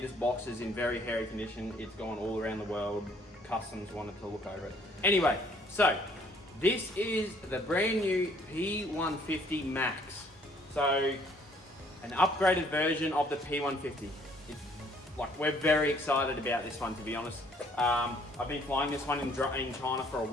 box is in very hairy condition. It's gone all around the world. Customs wanted to look over it. Anyway, so this is the brand new P150 Max. So an upgraded version of the P150. It's like, we're very excited about this one, to be honest. I've been flying this one in China for a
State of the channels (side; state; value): both; normal; correlation 0.61